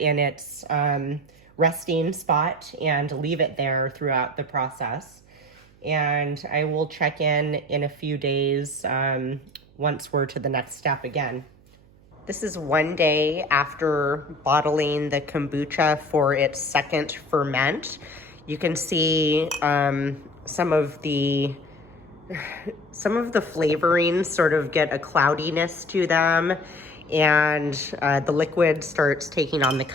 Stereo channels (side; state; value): right; noise; hum, 27 dB below the sound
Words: its resting spot and leave it there throughout the process. And I will check in a few days once we're to the next step again. This is one day after bottling the kombucha for its second ferment. You can see some of the flavorings sort of get a cloudiness to them, and the liquid starts taking on the